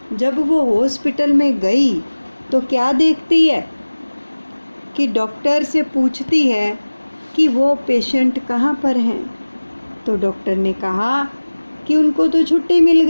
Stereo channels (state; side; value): inverted; both; correlation -1.00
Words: जब वो हॉस्पिटल में गई तो क्या देखती है कि डॉक्टर से पूछती है कि वो पेशेंट कहाँ पर हैं। तो डॉक्टर ने कहा कि उनको तो छुट्टी मिल